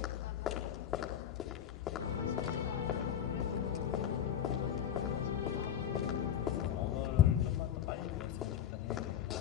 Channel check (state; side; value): quieter; right; 9.6 dB